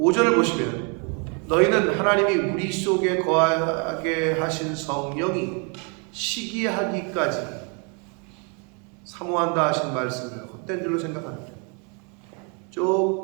보시면 너희는 하나님이 우리 속에 거하게 하신 성령이 시기하기까지 사모한다 하신 말씀을 헛된 줄로 생각합니다.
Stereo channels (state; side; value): quieter; left; 35.8 dB